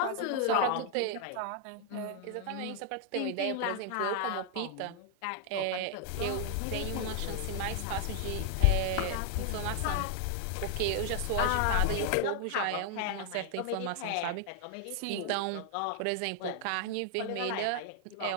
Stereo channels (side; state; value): both; different; correlation 0.00